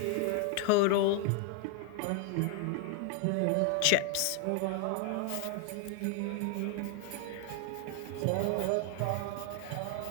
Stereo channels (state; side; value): different; both; correlation 0.01